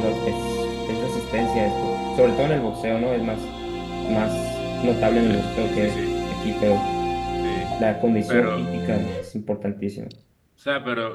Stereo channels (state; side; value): identical; both; correlation 1.00